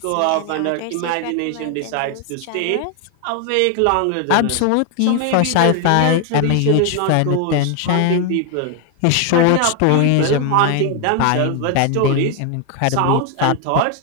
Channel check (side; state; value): both; different; correlation 0.01